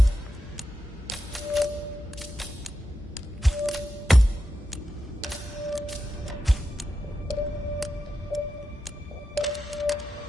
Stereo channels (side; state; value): both; normal; correlation 0.88